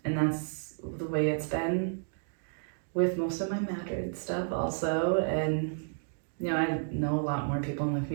And that's the way it's been with most of my Madrid stuff also. And, I know a lot more people in the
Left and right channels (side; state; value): left; silent; digital silence